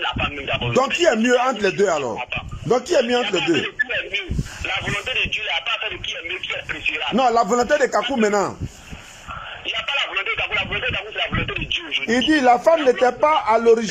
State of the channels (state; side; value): identical; both; correlation 1.00